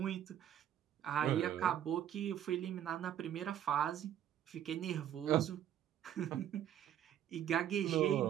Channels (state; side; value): quieter; left; 10.6 dB